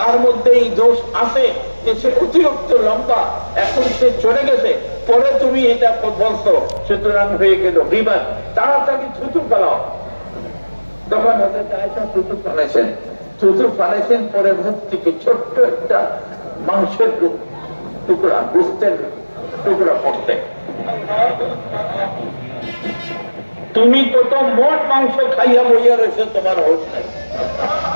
মধ্যে এই দোষ আছে যে সে অতিরিক্ত লম্বা, এখন সে চলে গেছে, পরে তুমি এটা বলছো, সুতরাং হয়ে গেল গীবত। তাড়াতাড়ি থুতু ফেলাও। তখন হযরত আয়েশা থুতু ফেলেছেন, পরে মুখ থেকে ছোট্ট একটা মাংসের টুকরা, গোস্তের টুকরা পড়তে। তুমি কত মোট মাংস খাইয়া বইয়া রয়েছে, তোমার হোশ নাই।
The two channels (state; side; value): inverted; both; correlation -1.00